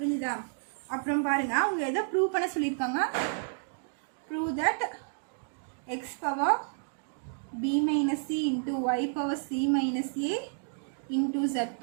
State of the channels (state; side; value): silent; left; digital silence